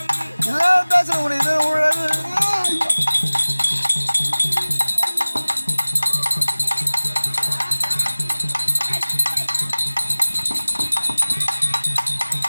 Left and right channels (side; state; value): both; inverted; correlation -1.00